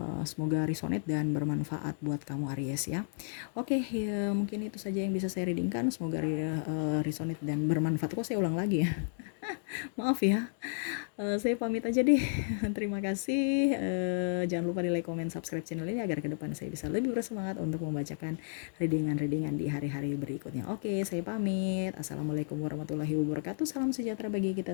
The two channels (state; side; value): silent; right; digital silence